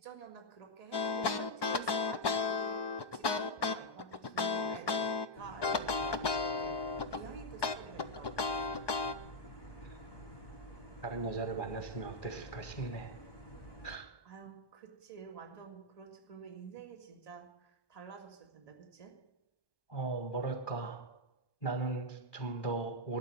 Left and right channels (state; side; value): late; right; 1.2 ms